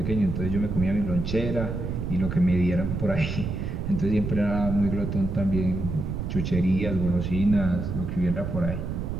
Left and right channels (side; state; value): right; noise; rumble, 4 dB below the sound